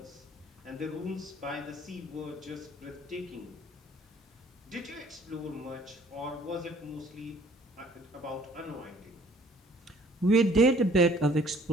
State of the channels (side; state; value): both; normal; correlation 0.57